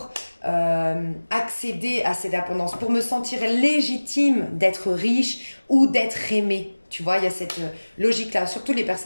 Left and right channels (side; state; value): both; inverted; correlation -1.00